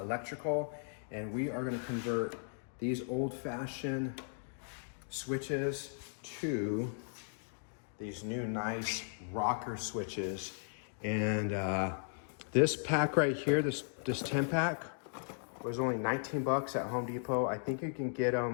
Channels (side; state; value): right; silent; digital silence